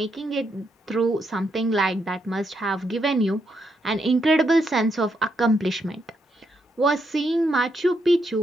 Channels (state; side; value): normal; both; correlation 0.79